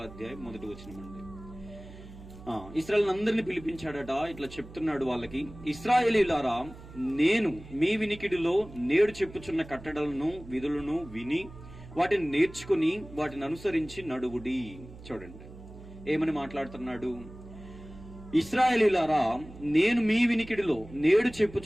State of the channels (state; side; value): noise; right; hum, 17 dB below the sound